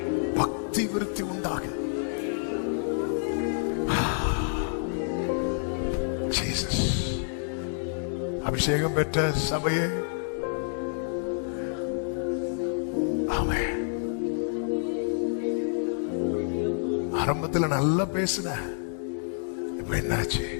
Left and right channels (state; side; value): silent; right; digital silence